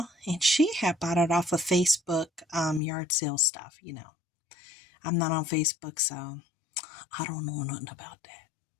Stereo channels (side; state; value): right; drops out; at 2.8 s